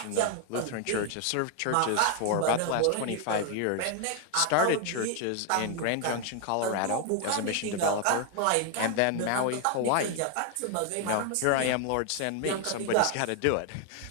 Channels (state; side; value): different; both; correlation 0.00